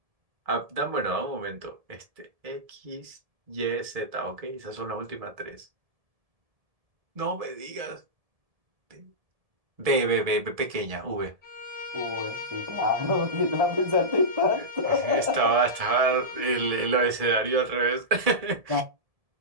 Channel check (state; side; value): late; left; 1.7 ms